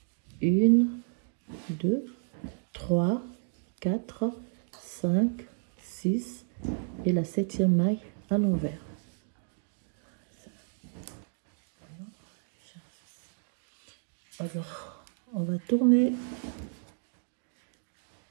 1, 2, 3, 4, 5, 6 et la 7e maille à l'envers. Alors, on va tourner.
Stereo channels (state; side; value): silent; left; 57 dB below the other